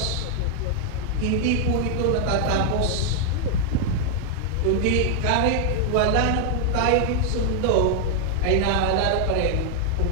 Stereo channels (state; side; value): different; both; correlation 0.00